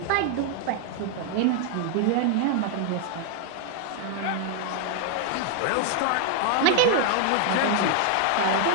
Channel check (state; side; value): different; both; correlation 0.00